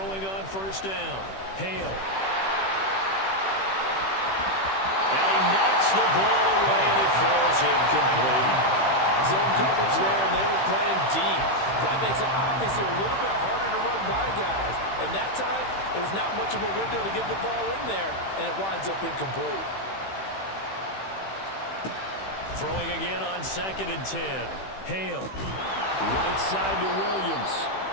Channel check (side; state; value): right; late; 15 ms